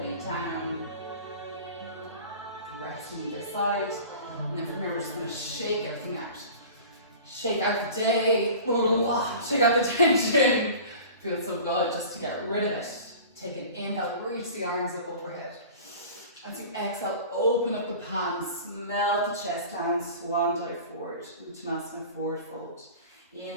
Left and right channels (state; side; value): inverted; both; correlation -0.40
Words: down. Rest on either side. And then from here we're just going to shake everything out. Shake out the day. Shake out the tension. Feels so good just to get rid of it. Take an inhale, reach the arms up overhead. As you exhale, open up the palms, melt the chest down, swan dive forward, Uttanasana, forward fold.